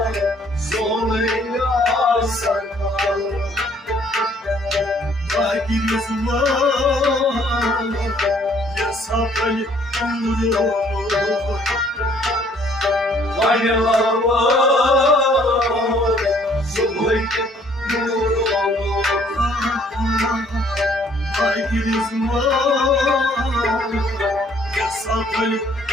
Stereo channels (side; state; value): both; normal; correlation 0.61